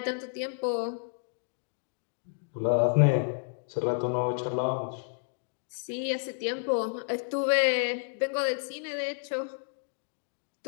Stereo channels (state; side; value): silent; right; digital silence